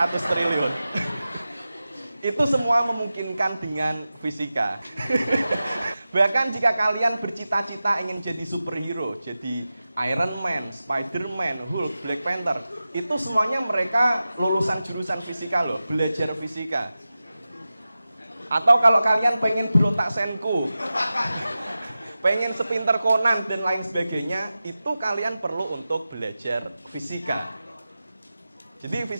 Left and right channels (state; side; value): inverted; both; correlation -0.94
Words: triliun. Itu semua memungkinkan dengan fisika. Bahkan jika kalian bercita-cita ingin jadi superhero, jadi Iron Man, Spider-Man, Hulk, Black Panther, itu semuanya mereka lulusan jurusan fisika loh, belajar fisika. Atau kalau kalian pengen berotak senku, pengen sepinter Conan dan lain sebagainya, itu kalian perlu untuk belajar fisika. Jadi